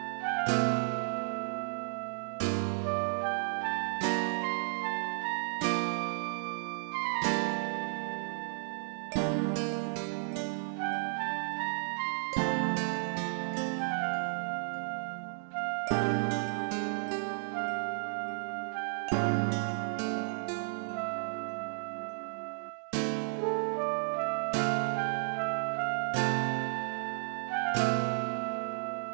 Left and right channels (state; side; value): silent; left; digital silence